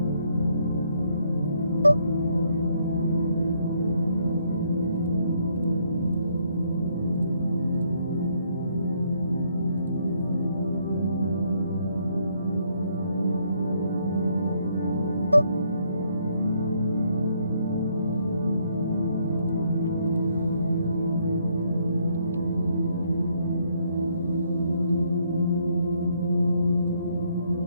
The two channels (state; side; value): inverted; both; correlation -0.70